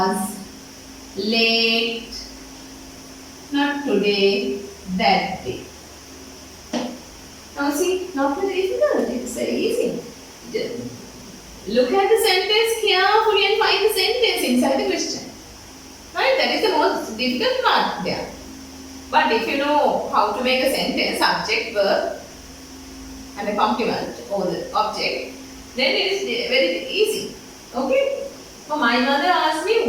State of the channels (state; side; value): identical; both; correlation 1.00